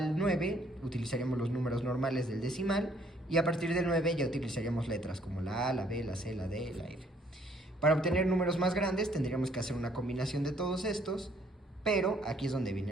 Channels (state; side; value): normal; both; correlation 0.64